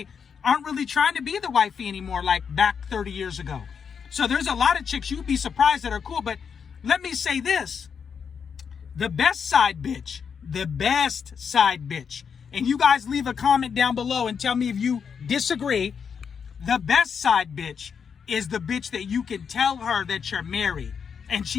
aren't really trying to be the wifey anymore like back 30 years ago. So there's a lot of chicks you'd be surprised that are cool. But let me say this. The best side bitch, and you guys leave a comment down below and tell me if you disagree. The best side bitch is the bitch that you can tell her that you're married and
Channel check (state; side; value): quieter; right; 6.7 dB